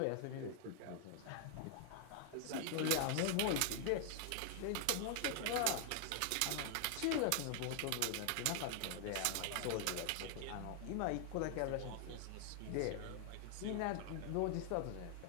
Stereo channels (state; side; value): different; both; correlation 0.00